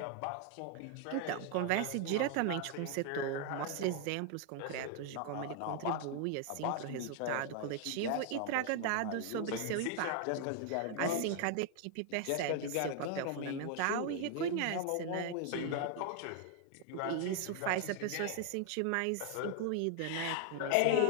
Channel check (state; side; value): different; both; correlation 0.00